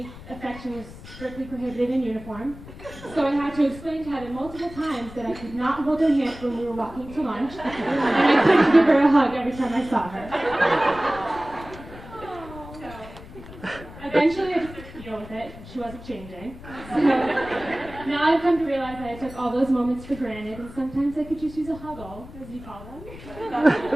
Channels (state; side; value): noise; left; rumble, 16 dB below the sound